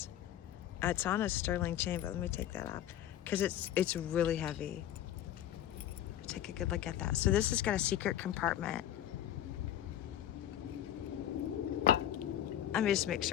It's on a sterling chain, but let me take that off because it's really heavy. Take a good look at that. So this has got a secret compartment. Let me just make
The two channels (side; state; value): right; quieter; 11.6 dB